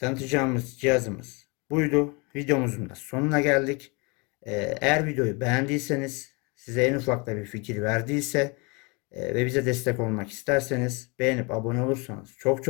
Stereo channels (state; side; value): quieter; right; 29.8 dB